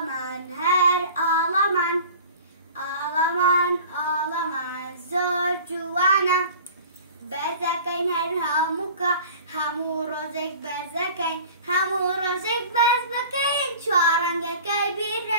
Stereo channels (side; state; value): both; inverted; correlation -0.43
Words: هەر ئاڵەمان ئاڵەمان زۆر جوانە بەرزەکەین هەر هەمووکە هەموو ڕۆژێک بەرزەکەین هەموو ڕۆژێک بەرز بکەین چوارڕەنگەکەی بیر